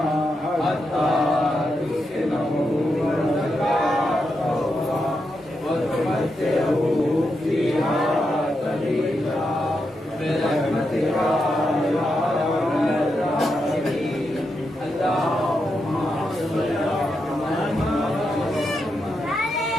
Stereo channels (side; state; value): both; normal; correlation 0.85